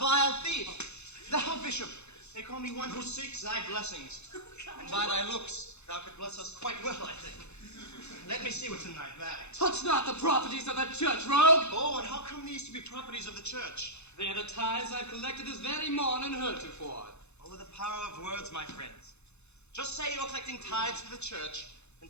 thief. Thou, Bishop, they call me one who seeks thy blessings. And by thy looks, thou could bless us quite well, I think. Let me see what's in thy bag. Touch not the properties of that church, rogue! Oh, and how come these to be properties of the church? They are the tithes I've collected this very morning heretofore. Over the power of words, my friends. Just say you're collecting tithes for the church, and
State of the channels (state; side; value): late; right; 0.81 ms